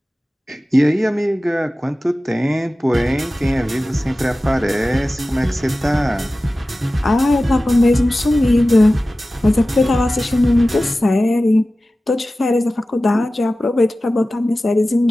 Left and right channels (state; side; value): normal; both; correlation 0.96